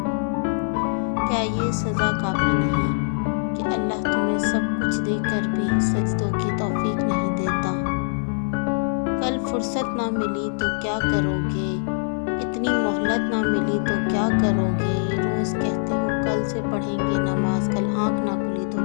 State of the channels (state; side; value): silent; right; 58 dB below the other